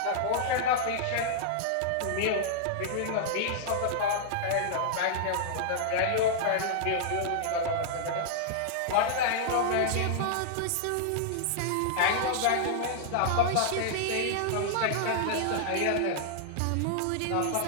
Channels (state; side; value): different; both; correlation -0.01